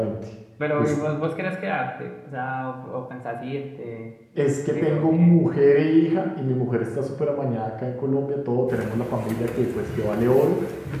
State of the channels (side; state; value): both; identical; correlation 1.00